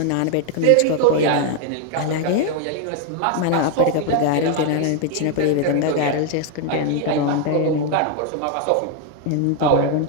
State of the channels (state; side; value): different; both; correlation 0.01